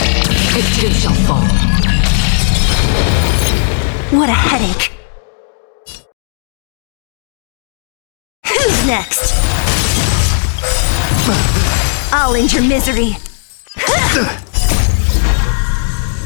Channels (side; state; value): right; silent; digital silence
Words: It too shall fall. What a headache. Who's next? I'll end your misery.